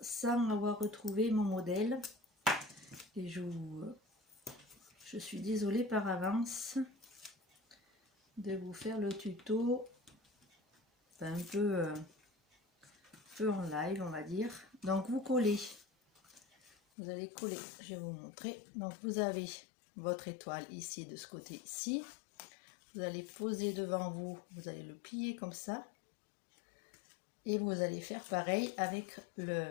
avoir retrouvé mon modèle. Et je suis désolée par avance de vous faire le tuto un peu feu en live, on va dire. Donc vous collez, vous allez coller, je vais vous montrer. Donc vous avez votre étoile ici, de ce côté-ci. Vous allez poser devant vous, vous allez le plier comme ça. Et vous allez faire pareil avec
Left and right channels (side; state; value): right; drops out; at 16.8 s